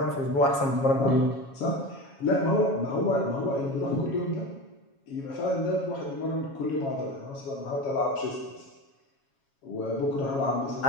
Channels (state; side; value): late; right; 7.3 ms